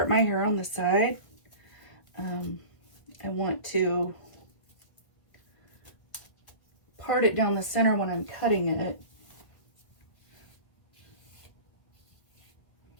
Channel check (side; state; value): right; late; 1.7 ms